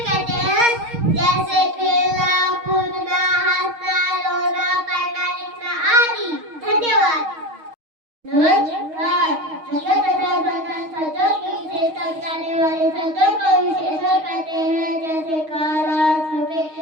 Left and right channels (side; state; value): left; late; 6.4 ms